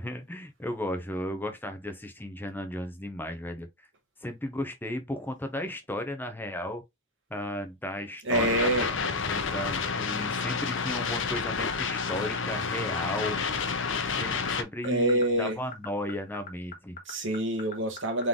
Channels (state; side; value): normal; both; correlation 0.07